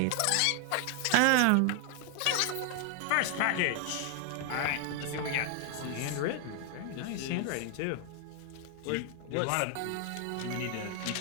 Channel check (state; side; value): different; both; correlation 0.00